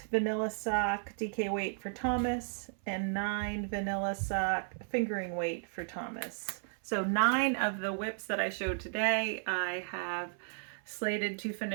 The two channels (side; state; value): left; silent; 55 dB below the other